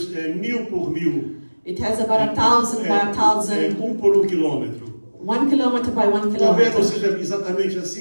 1000 por 1000. it has about 1,000 by 1,000, 1 por 1 quilômetro. 1 kilometer by 1 Talvez não kilometer. seja exatamente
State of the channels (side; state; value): both; inverted; correlation -1.00